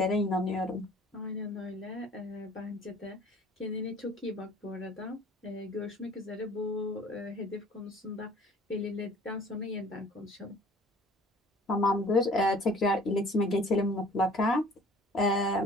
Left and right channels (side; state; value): both; normal; correlation 0.50